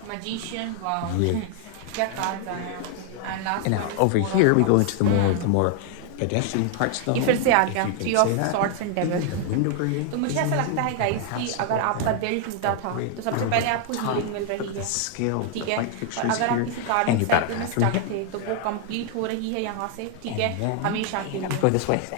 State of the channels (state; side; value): different; both; correlation 0.00